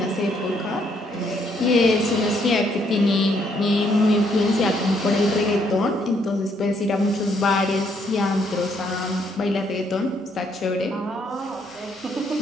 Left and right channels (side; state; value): both; normal; correlation 0.71